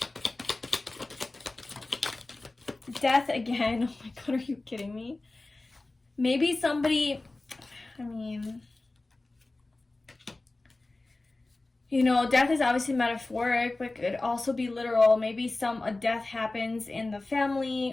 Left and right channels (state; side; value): quieter; right; 3.1 dB